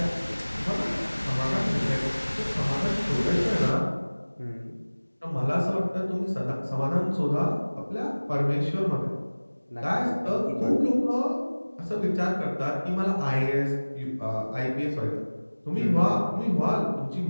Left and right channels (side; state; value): both; inverted; correlation -1.00